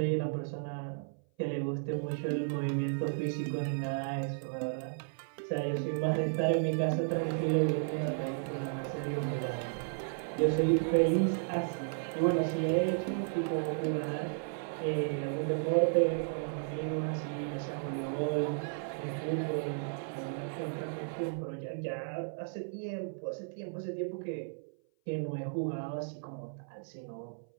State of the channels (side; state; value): left; silent; 55 dB below the other